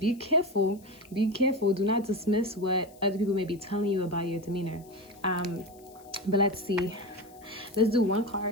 careful, do not dismiss what other people may be telling you about your demeanor. But let's see, let's do one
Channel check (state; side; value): noise; left; hiss, 26 dB below the sound